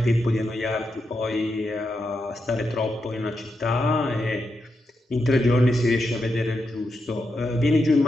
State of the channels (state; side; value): normal; both; correlation 0.85